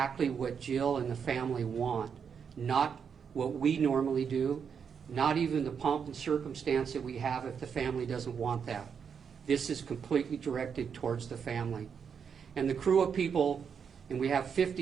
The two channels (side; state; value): left; quieter; 6.8 dB